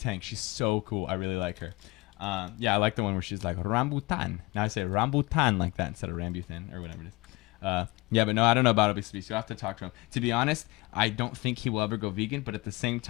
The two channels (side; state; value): right; quieter; 22.7 dB